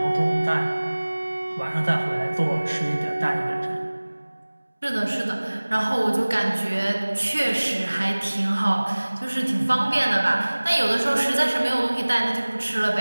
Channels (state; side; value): inverted; both; correlation -1.00